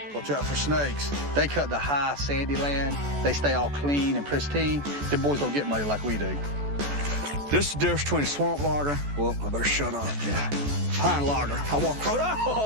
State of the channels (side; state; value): left; late; 14 ms